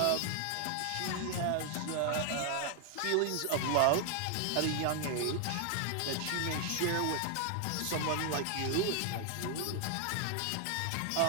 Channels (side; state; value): both; different; correlation 0.00